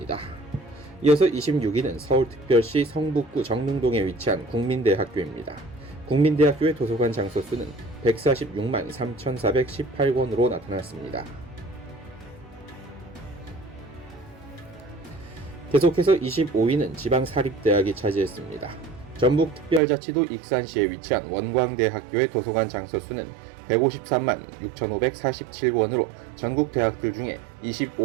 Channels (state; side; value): drops out; left; at 19.8 s